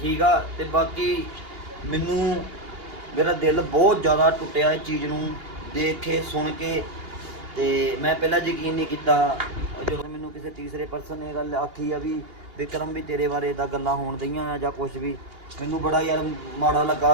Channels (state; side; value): late; left; 2.8 ms